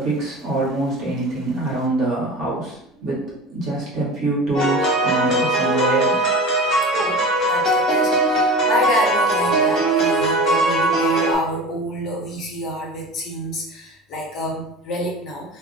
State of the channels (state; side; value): normal; both; correlation 0.34